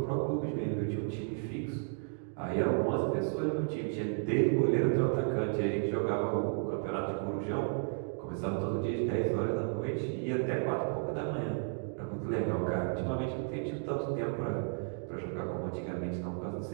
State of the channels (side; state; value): left; silent; 56 dB below the other